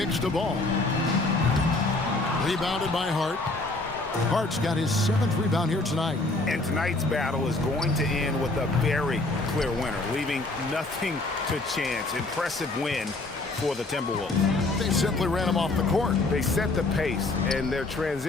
the ball. Rebounded by Hart. Hart's got his 7th rebound here tonight. And tonight's battle is going to end with a very clear winner, leaving nothing to chance. Impressive win for the Timberwolves. They simply ran him off the court. They set the pace, and their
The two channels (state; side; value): quieter; right; 3.1 dB